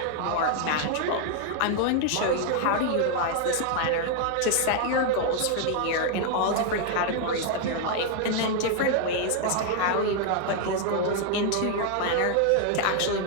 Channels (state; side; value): different; both; correlation 0.00